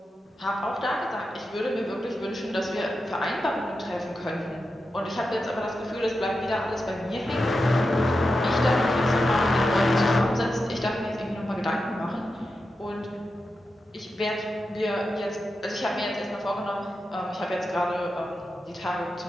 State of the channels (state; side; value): normal; both; correlation 0.90